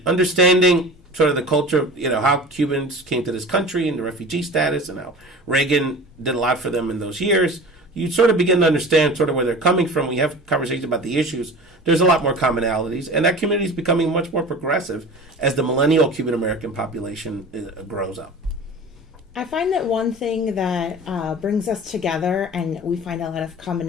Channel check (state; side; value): normal; both; correlation 0.37